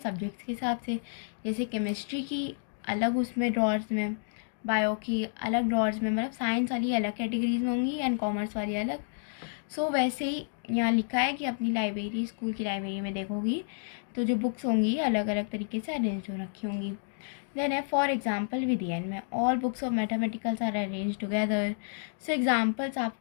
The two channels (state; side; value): silent; right; digital silence